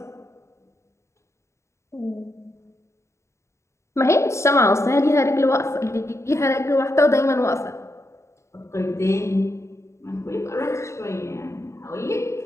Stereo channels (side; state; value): right; late; 0.14 ms